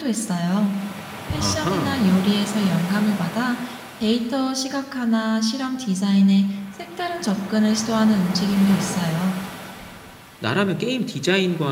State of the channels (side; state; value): both; identical; correlation 1.00